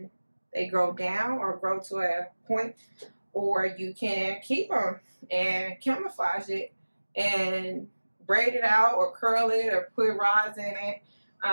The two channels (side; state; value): both; inverted; correlation -1.00